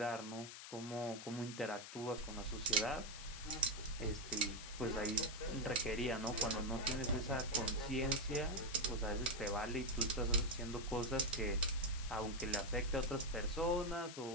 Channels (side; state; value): left; noise; hiss, 11 dB below the sound